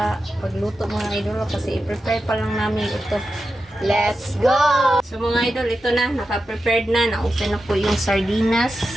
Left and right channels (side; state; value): both; normal; correlation 0.91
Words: pagluto mga idol kasi i-prepare pa lang namin ito. Let's go! So mga idol, ito na, naka-prepared na, na-open na po yung sardinas.